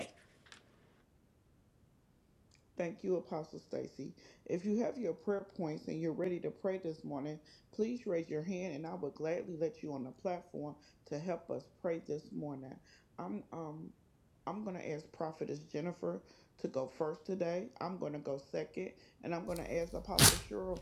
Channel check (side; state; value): both; identical; correlation 1.00